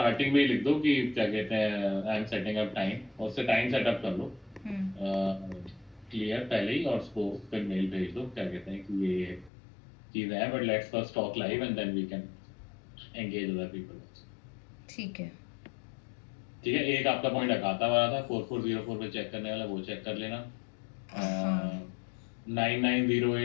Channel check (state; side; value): drops out; right; at 9.5 s